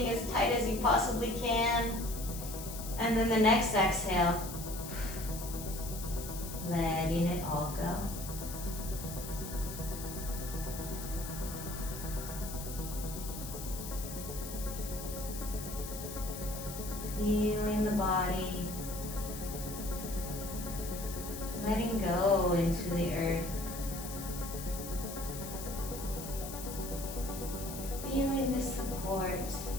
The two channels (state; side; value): noise; left; hiss, 9 dB below the sound